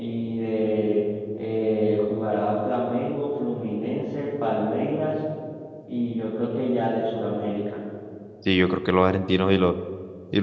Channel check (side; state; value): both; identical; correlation 1.00